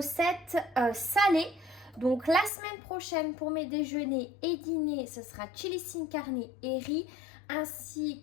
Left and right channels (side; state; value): right; drops out; at 2.5 s